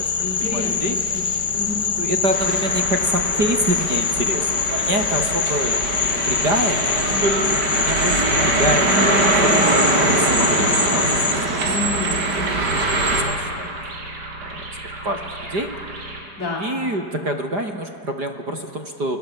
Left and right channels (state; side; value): late; left; 5.0 ms